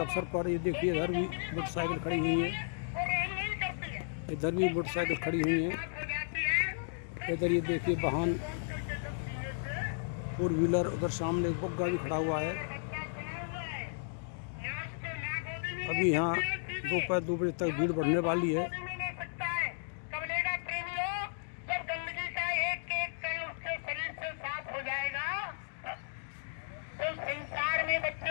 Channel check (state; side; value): silent; right; digital silence